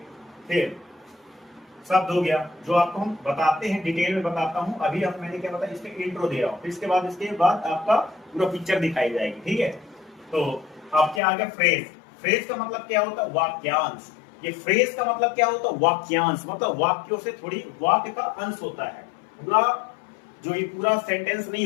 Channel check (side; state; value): right; drops out; at 11.2 s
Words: फिर शब्द हो गया जो आपको हम बताते हैं, डिटेल में बताता हूं। अभी अब मैंने क्या बताया, इसमें इंट्रो दे रहा हूं, फिर इसके बाद आपका पूरा पिक्चर दिखाई जाएगी। ठीक है, तो अब क्या आ गया, फ्रेज। फ्रेज का मतलब क्या होता है, वाक्यांश। ये फ्रेज का मतलब क्या होता है, वाक्यांश, मतलब वाक्यों से थोड़ी वाक्य का अंश होता है। पूरा जो ये पूरा सेंटेंस नहीं